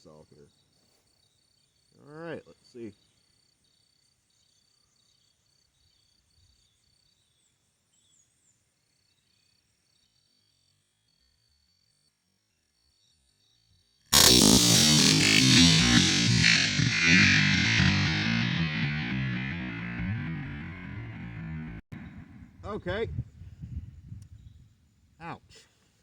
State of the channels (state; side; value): identical; both; correlation 1.00